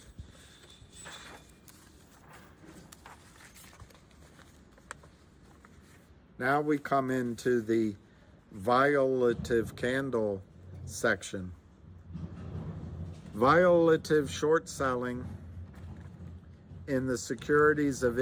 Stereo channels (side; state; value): both; identical; correlation 1.00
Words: Now we come into the violative candle section. Violative short selling in the securities of